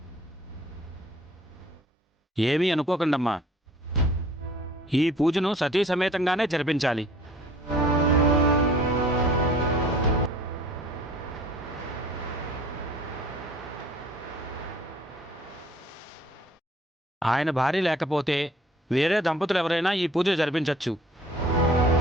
ఏమీ అనుకోకండమ్మా. ఈ పూజను సతీ సమేతంగానే జరిపించాలి. ఆయన భార్య లేకపోతే వేరే దంపతులు ఎవరైనా ఈ పూజ జరిపించవచ్చు.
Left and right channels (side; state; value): both; normal; correlation 0.52